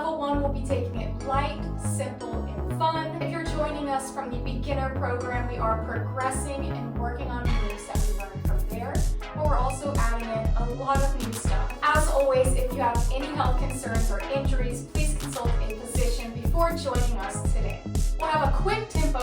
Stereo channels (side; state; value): both; identical; correlation 1.00